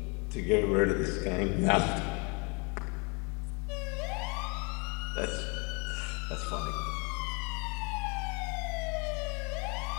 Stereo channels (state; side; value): quieter; right; 32.5 dB